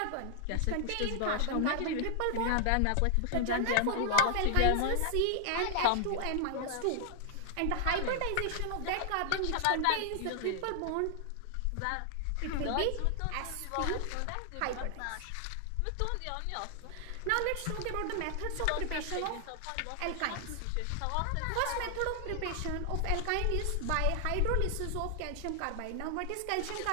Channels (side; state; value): both; different; correlation 0.00